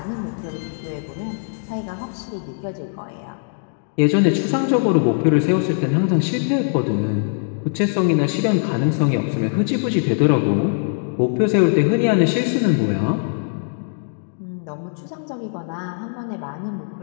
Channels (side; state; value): right; silent; digital silence